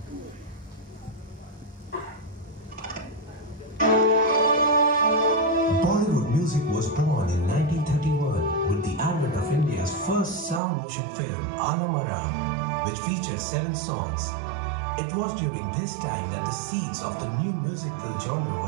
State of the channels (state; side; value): drops out; left; at 10.6 s